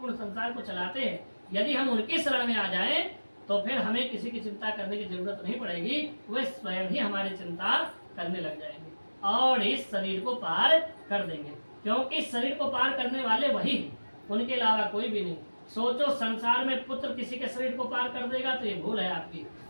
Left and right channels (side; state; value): both; inverted; correlation -1.00